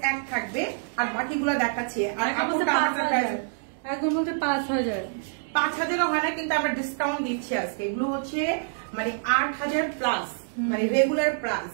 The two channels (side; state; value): left; silent; digital silence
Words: এক থাকবে আর বাকিগুলো দেখাচ্ছি। আর একদম বলতে 5000 5000ও হয় না, কিন্তু আমরা ডিসকাউন্ট দিচ্ছি আজকে। এগুলো হচ্ছে মানে 8000 প্লাস, মানে রেগুলার প্রাইস,